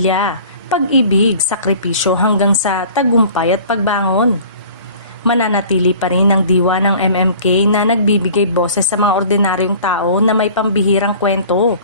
pag-ibig, sakripisyo hanggang sa tagumpay at pagbangon. Mananatili pa rin ang diwa ng MMK na nagbibigay boses sa mga ordinaryong tao na may pambihirang kwento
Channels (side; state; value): both; inverted; correlation -0.46